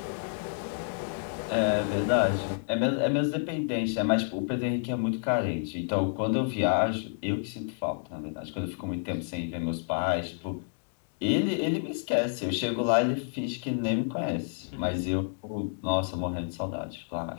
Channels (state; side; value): silent; right; digital silence